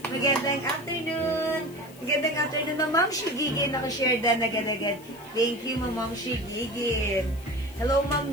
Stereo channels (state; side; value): noise; left; hiss, 23 dB below the sound